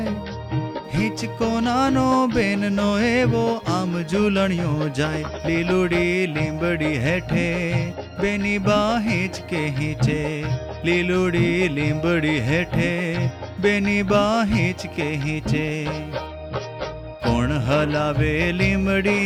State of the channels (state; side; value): identical; both; correlation 1.00